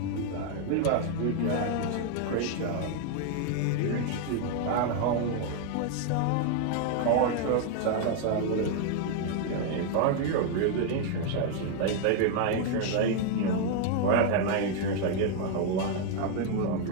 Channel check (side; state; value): both; different; correlation 0.00